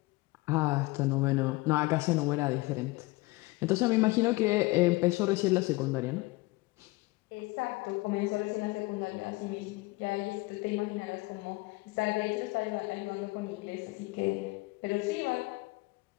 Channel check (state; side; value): quieter; right; 22.3 dB